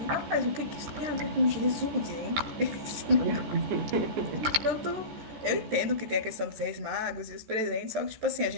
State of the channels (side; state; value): left; late; 14 ms